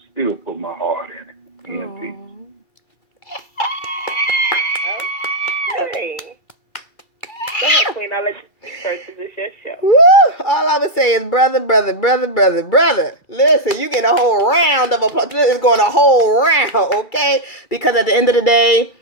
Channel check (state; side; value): late; right; 2.4 ms